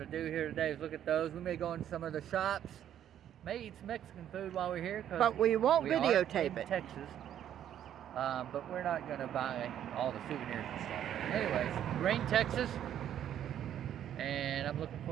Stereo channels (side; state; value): left; quieter; 10.5 dB